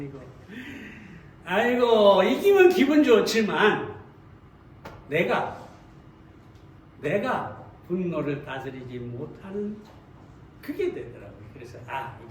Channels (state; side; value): identical; both; correlation 1.00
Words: 아이고 이기면 기분 좋지만 내가 분노를 다스리지 못하는 그게 되더라고요. 그래서